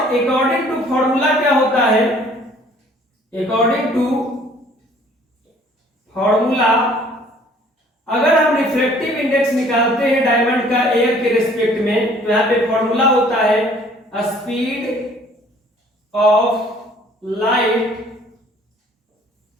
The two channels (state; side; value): normal; both; correlation 0.56